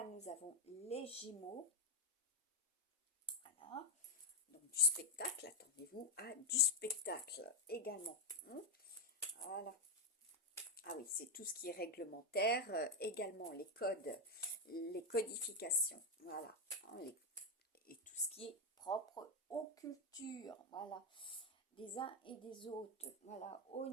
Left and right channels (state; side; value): normal; both; correlation 0.04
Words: nous avons les Gémeaux. Voilà. Donc du spectacle, attendez-vous à du spectacle également. Voilà. Ah oui, c'est tout ce qui est réglementaire, également les codes, les codifications, voilà, hein, et tout ce qui est propre aux cultures, voilà, des uns et des autres, voilà, au